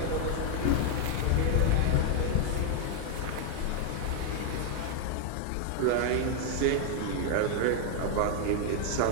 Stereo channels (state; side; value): different; both; correlation 0.00